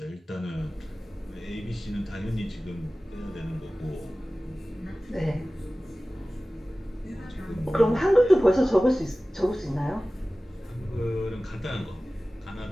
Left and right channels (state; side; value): normal; both; correlation 0.97